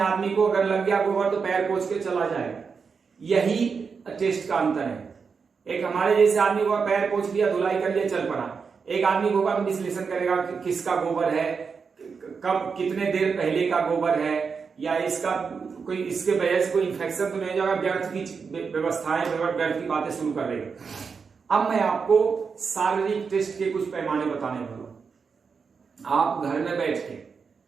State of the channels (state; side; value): quieter; left; 5.5 dB